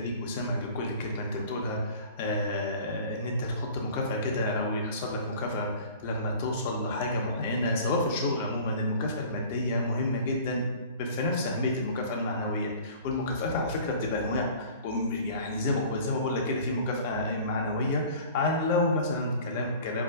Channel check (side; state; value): both; inverted; correlation -0.45